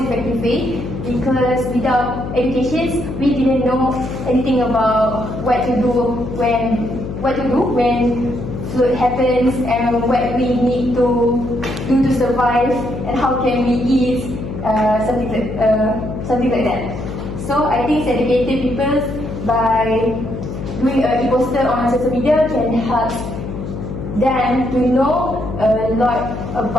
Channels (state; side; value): noise; left; hum, 7 dB below the sound